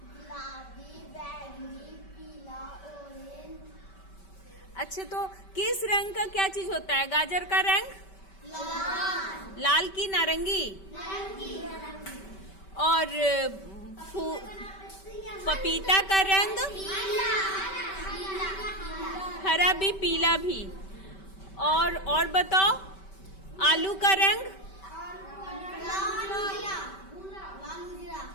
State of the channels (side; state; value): right; late; 5.2 ms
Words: अच्छा, तो किस रंग का क्या चीज होता है? गाजर का रंग लाल की नारंगी? और पपीता का रंग हरा भी पीला भी। और बताओ, आलू का रंग